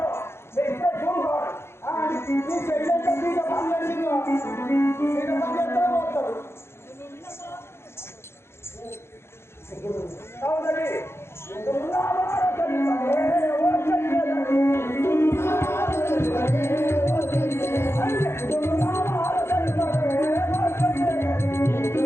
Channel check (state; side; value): late; right; 0.12 ms